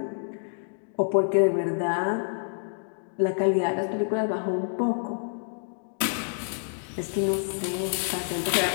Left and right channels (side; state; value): right; silent; digital silence